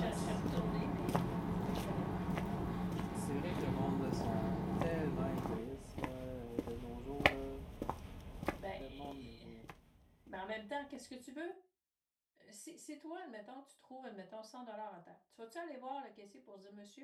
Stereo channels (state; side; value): identical; both; correlation 1.00